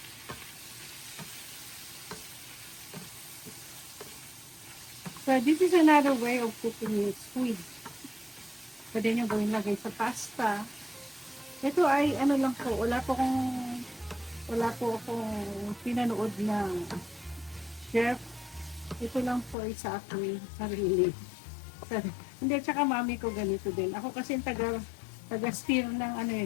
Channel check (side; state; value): right; drops out; at 19.6 s